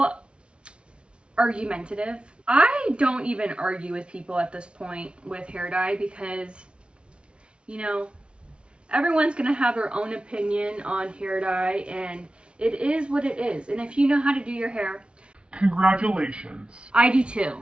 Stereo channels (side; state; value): left; late; 0.057 ms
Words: argumentative. I don't even argue with people at this point with hair dye because, you know, everyone's gonna have their own opinion on hair dye, and it is what it is. And if you know how to do your hair, Congratulations. I do too.